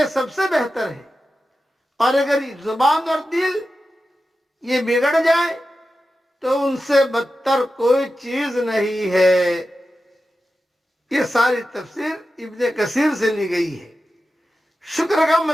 سب سے بہتر ہے، اور اگر زبان اور دل یہ بگڑ جائے تو ان سے بدتر کوئی چیز نہیں ہے۔ یہ ساری تفسیر ابن کثیر سے لی گئی ہے۔ شکر کا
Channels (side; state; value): both; normal; correlation 0.92